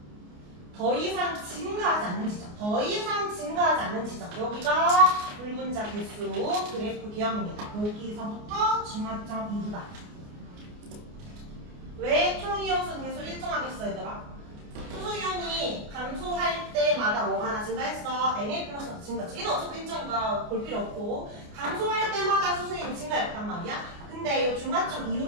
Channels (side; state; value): left; late; 29 ms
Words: 더 이상 증가하지 않는 지점. 더 이상 증가하지 않는 지점. 여기가 물분자 개수 그래프 개형입니다. 여기서부터 중화점 이후다. 왜 총이온수 개수 일정하겠어 얘들아? 수소이온이 감소할 때마다 뭐가 하나 증가했어? Na 플러스가 증가했지. 얘는 어차피 일정이니까 볼 필요 없고 감소할 때마다 수소이온이 증가했단 말이야. 근데 이 중화점